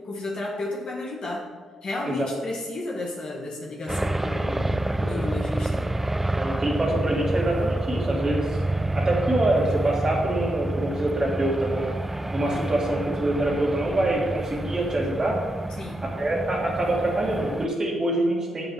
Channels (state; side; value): normal; both; correlation 0.86